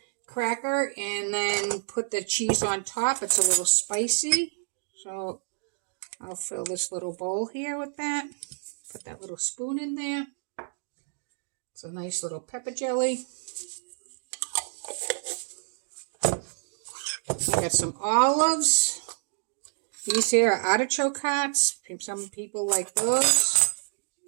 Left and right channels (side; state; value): left; silent; digital silence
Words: cracker and then put the cheese on top. It's a little spicy, so I'll fill this little bowl here with that. Put that little spoon in there. It's a nice little pepper jelly. I got some olives. These here are artichoke hearts. Some people like those.